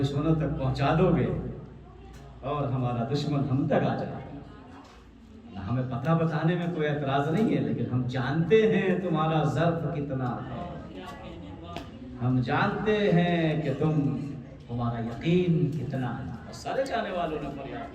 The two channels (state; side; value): identical; both; correlation 1.00